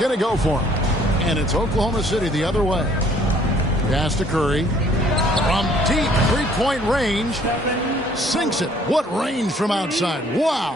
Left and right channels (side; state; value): both; normal; correlation 0.60